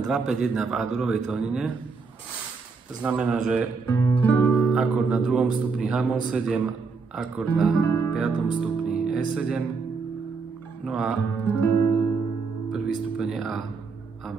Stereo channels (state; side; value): quieter; left; 4.7 dB